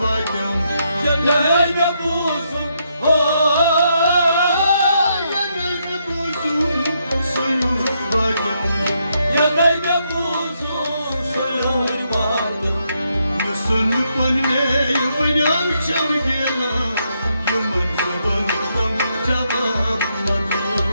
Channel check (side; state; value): both; inverted; correlation -0.78